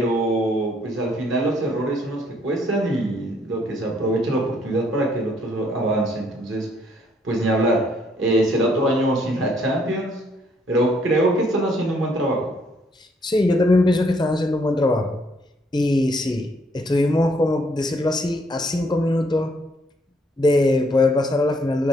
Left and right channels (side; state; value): both; normal; correlation 0.68